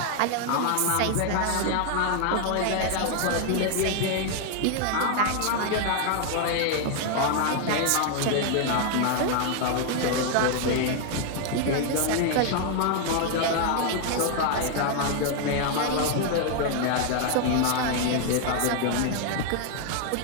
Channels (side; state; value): both; different; correlation 0.00